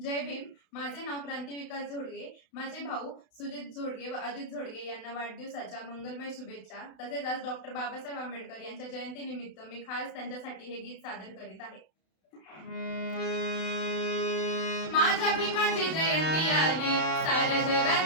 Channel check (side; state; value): right; late; 32 ms